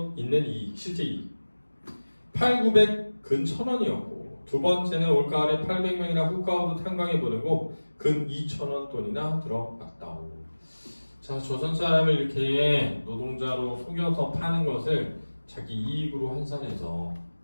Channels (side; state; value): both; inverted; correlation -1.00